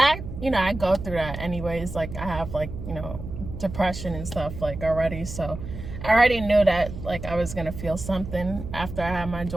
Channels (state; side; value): noise; right; hum, 9 dB below the sound